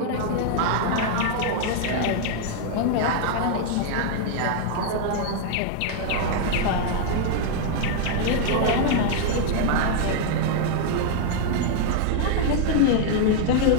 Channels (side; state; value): both; different; correlation 0.00